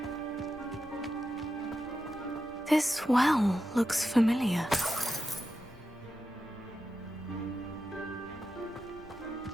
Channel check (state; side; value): normal; both; correlation 0.89